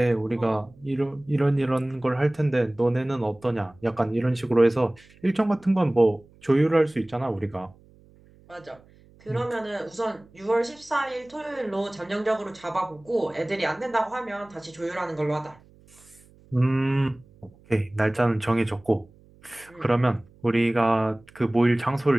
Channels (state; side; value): noise; right; hum, 27 dB below the sound